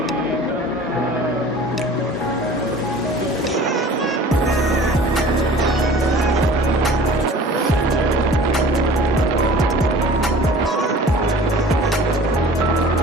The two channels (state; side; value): normal; both; correlation 0.44